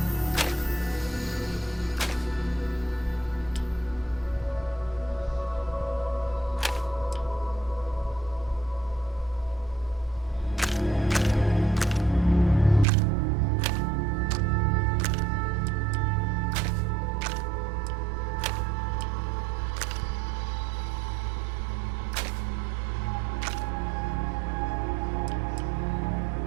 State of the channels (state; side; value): drops out; left; at 12.9 s